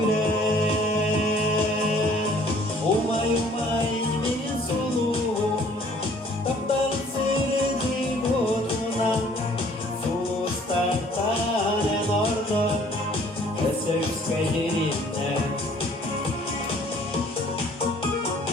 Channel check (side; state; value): both; normal; correlation 0.57